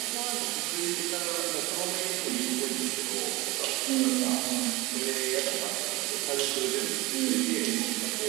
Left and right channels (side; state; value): left; quieter; 21.8 dB